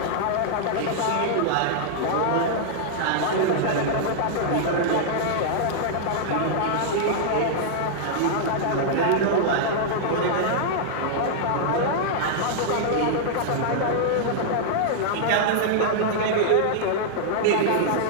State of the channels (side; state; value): both; different; correlation -0.01